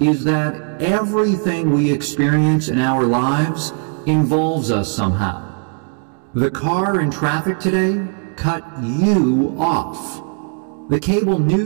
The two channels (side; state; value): left; quieter; 38.9 dB